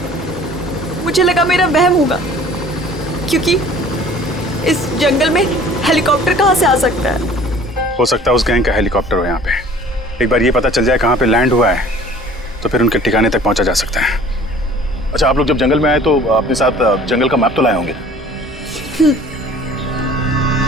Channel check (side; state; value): both; normal; correlation 0.49